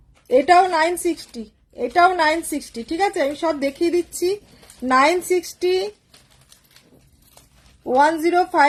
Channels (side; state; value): both; identical; correlation 1.00